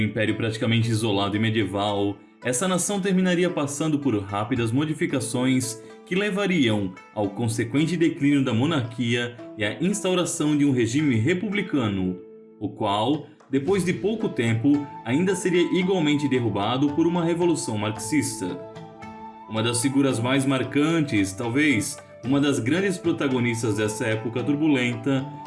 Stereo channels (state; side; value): identical; both; correlation 1.00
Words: um império praticamente isolado e medieval, essa nação terminaria passando por rápidas modificações que levariam ao consequente declínio da monarquia e à instauração de um regime republicano, o qual, depois de pouco tempo, ainda seria igualmente derrubado por uma revolução marxista. Uma das figuras mais marcantes, talvez uma das grandes protagonistas dessa época turbulenta,